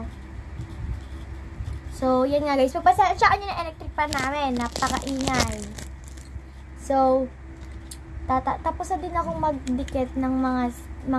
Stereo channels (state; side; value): identical; both; correlation 1.00